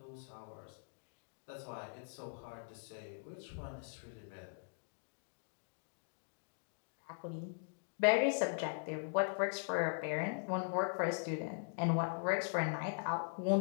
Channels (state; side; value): silent; right; digital silence